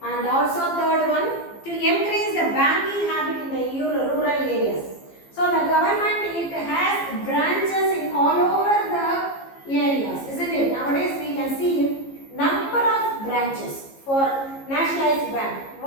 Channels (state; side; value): late; right; 15 ms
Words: And also third one, to increase the banking habit in the rural areas. So the government, it has branches in all over the areas, isn't it? Nowadays we can see number of branches for nationalized bank.